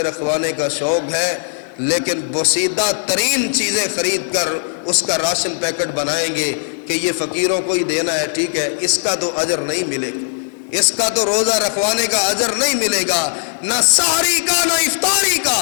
رکھوانے کا شوق ہے، لیکن بوسیدہ ترین چیزیں خرید کر اس کا راشن پیکٹ بنائیں گے کہ یہ فقیروں کو ہی دینا ہے، ٹھیک ہے، اس کا تو اجر نہیں ملے گا، اس کا تو روزہ رکھوانے کا اجر نہیں ملے گا، نہ سحری کا نہ افطاری کا،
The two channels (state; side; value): silent; right; digital silence